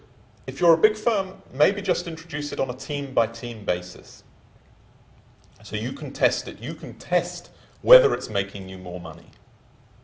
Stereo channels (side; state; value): both; identical; correlation 1.00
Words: If you're a big firm, maybe just introduce it on a team-by-team basis. So you can test it. You can test whether it's making you more money.